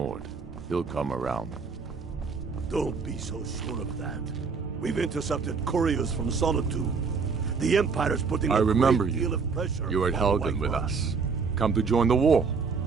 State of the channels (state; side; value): quieter; left; 5.1 dB